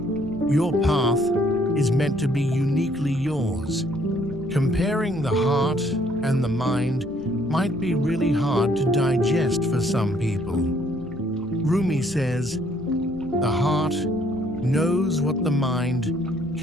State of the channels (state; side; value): normal; both; correlation 0.65